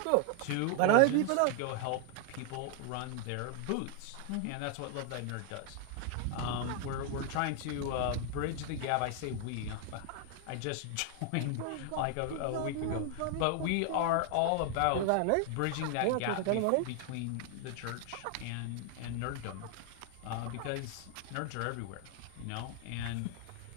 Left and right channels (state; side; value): different; both; correlation 0.00